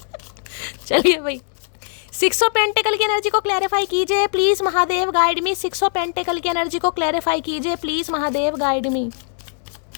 चलिए भाई, 6 ऑफ पेंटिकल की एनर्जी को क्लैरिफाई कीजिए please Mahadev guide me. 6 of pentacle की एनर्जी को क्लैरिफाई कीजिए प्लीज महादेव गाइड मी।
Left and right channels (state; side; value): silent; right; digital silence